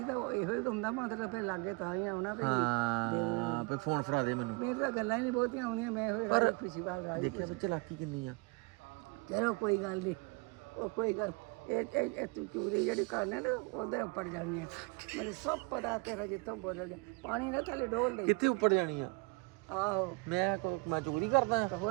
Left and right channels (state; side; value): quieter; left; 28.6 dB